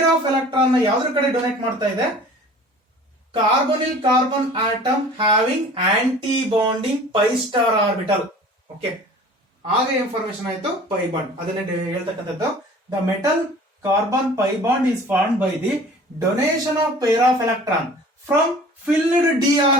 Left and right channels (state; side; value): normal; both; correlation 0.45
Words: of electron ನ ಯಾವ್ದ್ರ ಕಡೆ ಡೊನೇಟ್ ಮಾಡ್ತಾ ಇದೆ? Carbonyl carbon atom having anti bonding pi star orbital. Okay, ಆಗ ಇನ್ಫಾರ್ಮೇಶನ್ ಆಯ್ತು ಪೈ ಬಾಂಡ್. ಅದನ್ನೇ ಹೇಳ್ತಕ್ಕಂಥದ್ದು. The metal carbon pi bond is formed by the donation of pair of electron from filled d